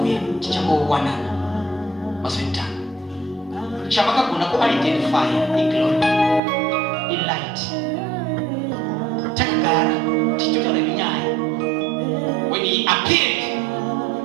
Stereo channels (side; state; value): left; drops out; at 6.4 s